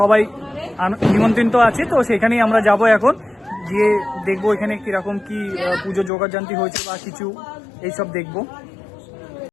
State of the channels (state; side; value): drops out; right; at 6.1 s